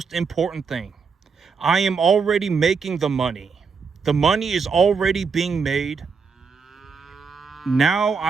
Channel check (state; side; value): quieter; left; 5.4 dB